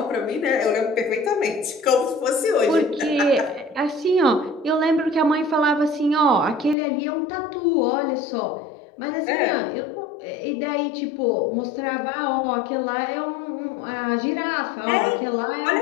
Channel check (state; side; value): drops out; right; at 6.8 s